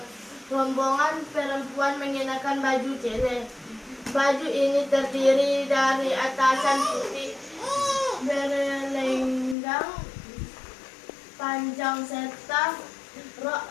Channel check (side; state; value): right; drops out; at 9.6 s